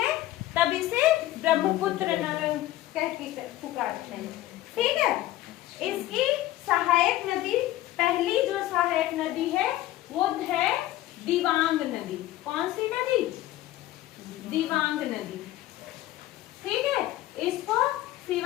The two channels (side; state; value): right; quieter; 15.4 dB